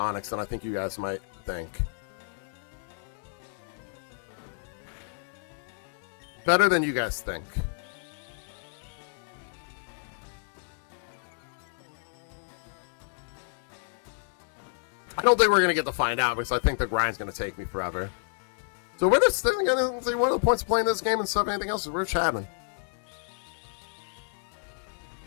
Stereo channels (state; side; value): silent; right; digital silence